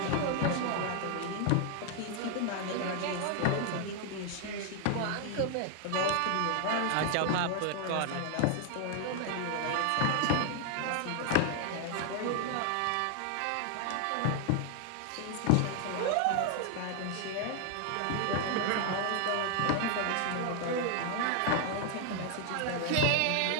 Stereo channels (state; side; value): different; both; correlation 0.00